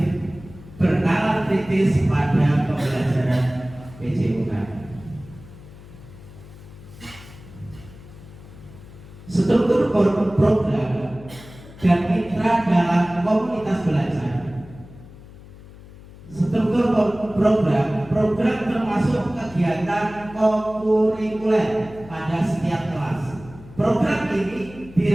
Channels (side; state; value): left; noise; hum, 19 dB below the sound